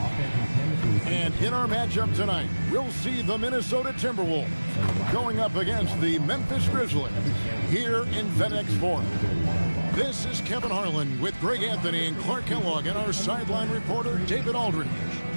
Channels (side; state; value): both; inverted; correlation -1.00